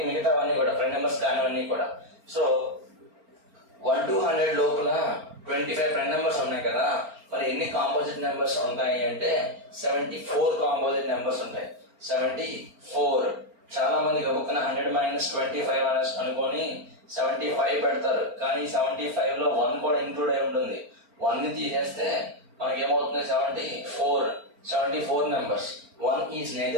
మిగతావన్నీ కూడా ప్రైమ్ నెంబర్స్ కానివన్నీ కూడా. సో 1 to 100 లోపల 25 ప్రైమ్ నెంబర్స్ ఉన్నాయి కదా, మరి ఎన్ని కాంపోజిట్ నెంబర్స్ ఉంటాయి అంటే 74 కాంపోజిట్ నెంబర్స్ ఉంటాయి. 74. చాలా మంది గబుక్కున 100 - 25 అనేసి అనుకొని 75 పెడతారు, కానీ 75 లో 1 కూడా ఇంక్లూడ్ అయి ఉంటుంది. 1 ని తీసేస్తే మనకి ఏమవుతుంది? 74 numbers. 1 is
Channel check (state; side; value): late; left; 4.4 ms